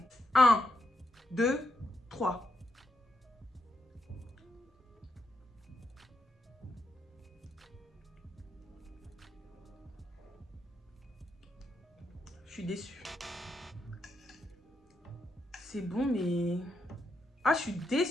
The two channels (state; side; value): normal; both; correlation 0.81